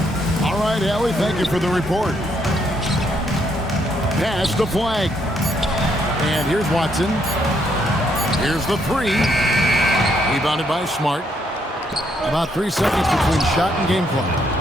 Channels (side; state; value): both; normal; correlation 0.73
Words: All right, Allie, thank you for the report. Pass the flag. And here's Watson. Here's the three. Rebounded by Smart. About 3 seconds between shot and game clock.